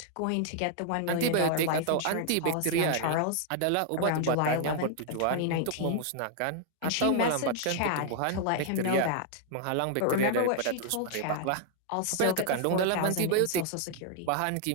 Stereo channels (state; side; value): different; both; correlation 0.00